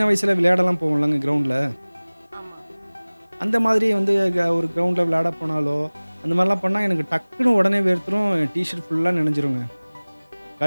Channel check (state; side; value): inverted; both; correlation -1.00